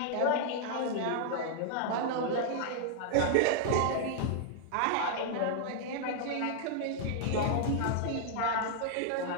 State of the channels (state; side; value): different; both; correlation 0.00